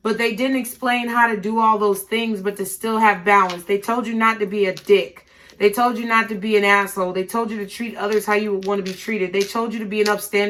but they didn't explain how to do all those things, but to still have balance. They told you not to be a dick. They told you not to be an asshole. They told you to treat others how you would want to be treated. They told you to be an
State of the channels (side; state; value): both; identical; correlation 1.00